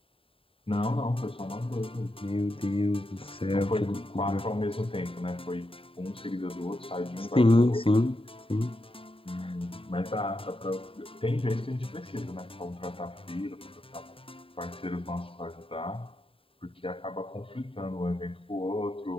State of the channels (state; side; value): late; right; 0.27 ms